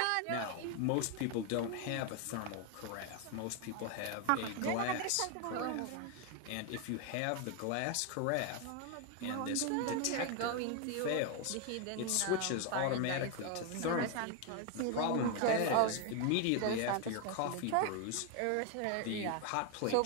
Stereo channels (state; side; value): different; both; correlation 0.01